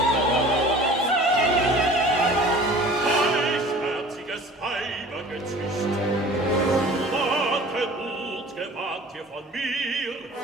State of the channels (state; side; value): normal; both; correlation 0.45